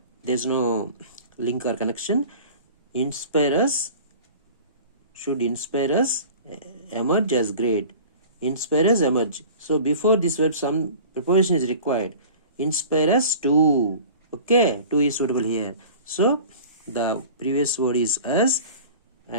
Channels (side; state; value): both; inverted; correlation -0.41